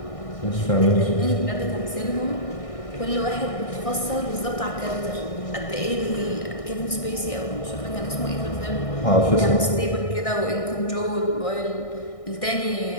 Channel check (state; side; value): late; right; 1.6 ms